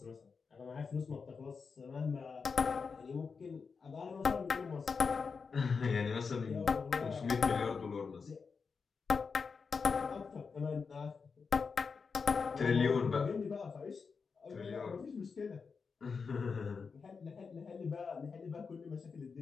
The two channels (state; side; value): quieter; right; 5.2 dB